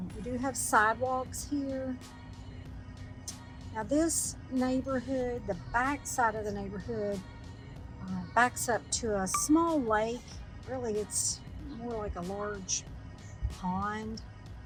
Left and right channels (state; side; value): identical; both; correlation 1.00